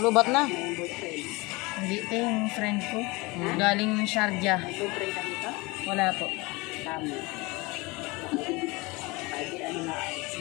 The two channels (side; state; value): right; quieter; 24.4 dB